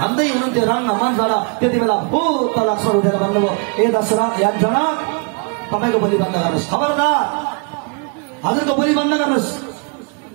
हुनुहुन्थ्यो रङ्गमञ्चबाट, त्यति बेला भूत लक्ष्मण उठेर भन्नुभयो, ए दशरथ या जनक, तपाईँको बोली बन्द गर्नुहोस्, खबरदार हजुरको बोली बन्द गर्नुहोस्।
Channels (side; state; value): left; quieter; 35.4 dB